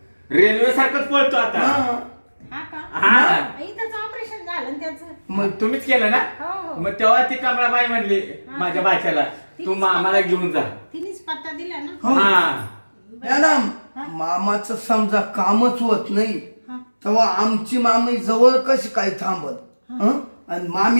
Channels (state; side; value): inverted; both; correlation -1.00